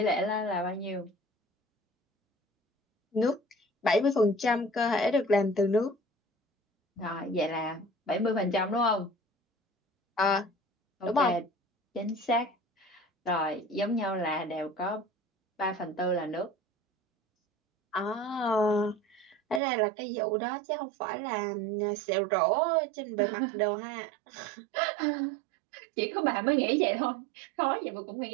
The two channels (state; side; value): drops out; left; at 19.6 s